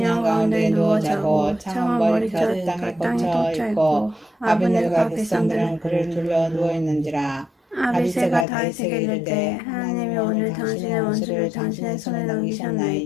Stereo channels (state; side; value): drops out; right; at 8.5 s